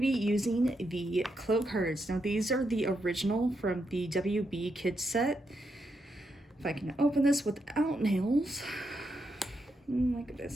be using the Clow cards. Now these are the original from the WB Kids set. If I can open this without nails. Look at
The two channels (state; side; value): normal; both; correlation 0.82